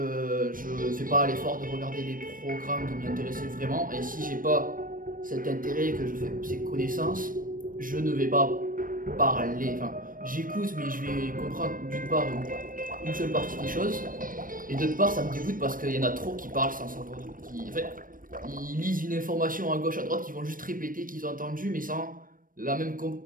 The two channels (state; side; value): late; left; 0.40 ms